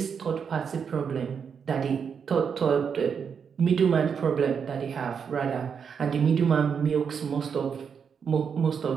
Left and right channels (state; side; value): quieter; left; 6.7 dB